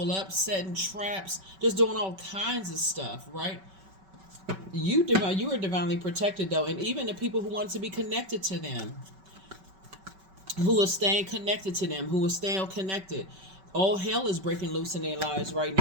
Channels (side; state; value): left; late; 5.3 ms